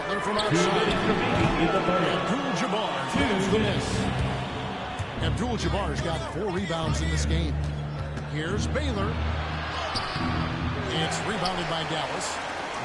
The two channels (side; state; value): both; identical; correlation 1.00